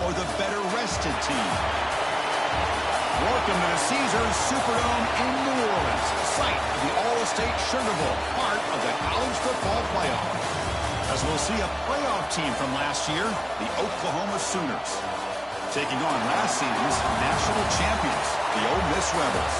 or the better-rested team? Welcome to the Caesars Superdome in New Orleans, site of the All-State Sugar Bowl, part of the college football playoff. As we'll see a playoff team from last year, the Oklahoma Sooners, taking on last season's national champions, the Ole Miss Rebels.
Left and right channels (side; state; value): both; identical; correlation 1.00